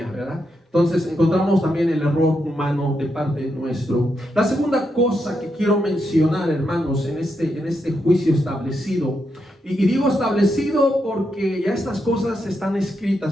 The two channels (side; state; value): both; normal; correlation 0.83